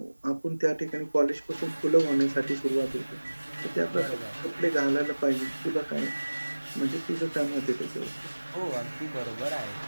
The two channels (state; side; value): inverted; both; correlation -1.00